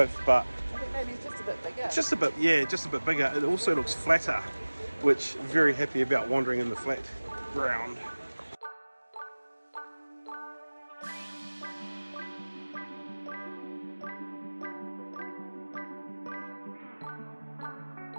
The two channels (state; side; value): inverted; both; correlation -1.00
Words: but I think maybe it's just a bit bigger. just a bit, yeah, just a bit bigger. It also looks flatter, which I'm very happy about wandering in the flat ground.